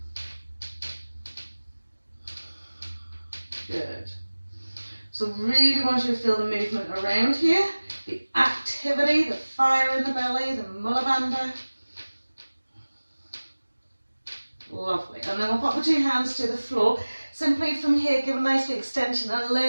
Good. So really want you to feel the movement around here, the activity, the fire in the belly, the Mula Bandha. Lovely. And then we'll pop the two hands to the floor. Simply from here, give a nice extension and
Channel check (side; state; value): both; inverted; correlation -1.00